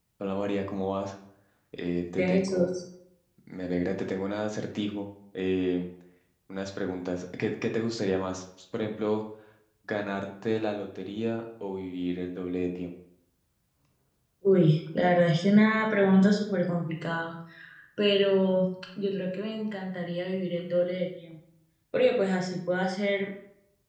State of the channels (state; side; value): identical; both; correlation 1.00